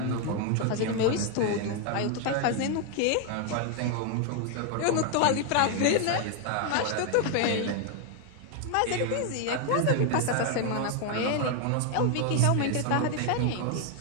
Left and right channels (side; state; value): both; different; correlation 0.01